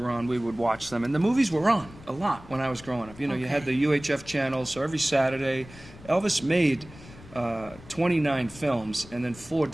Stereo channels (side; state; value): left; noise; rumble, 19 dB below the sound